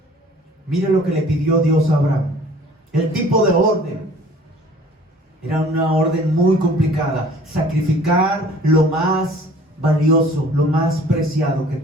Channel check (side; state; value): both; normal; correlation 0.51